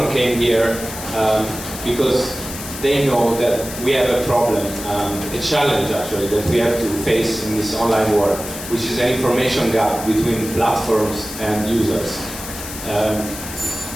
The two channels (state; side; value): noise; left; hiss, 10 dB below the sound